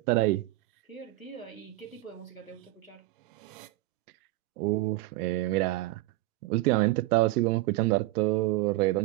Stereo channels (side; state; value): left; quieter; 18.6 dB